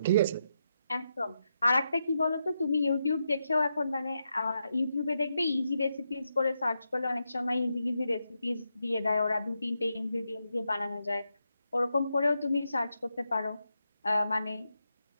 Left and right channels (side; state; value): both; inverted; correlation -0.85